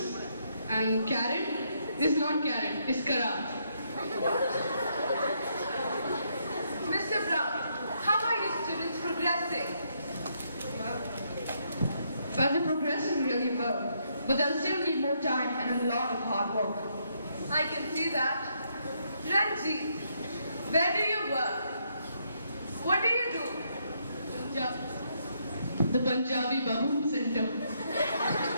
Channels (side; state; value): both; inverted; correlation -0.75